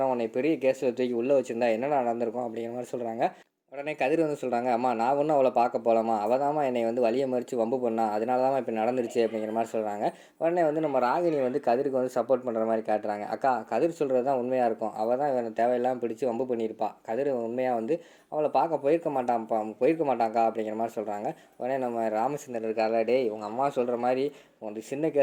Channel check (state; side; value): identical; both; correlation 1.00